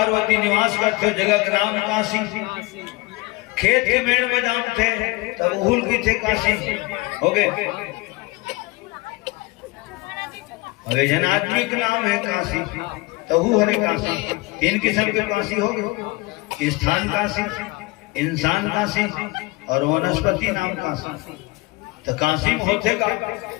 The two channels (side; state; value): right; quieter; 23.5 dB